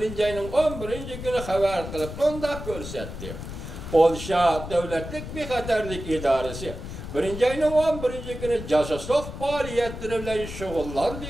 ayının 11. günü haber kılıp onda görsetti. Polşa Devletlik Bexaterlik İdaresi 1. ayının 11. günü casusluk faaliyetleri bilen şugullandı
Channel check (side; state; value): left; noise; rumble, 9 dB below the sound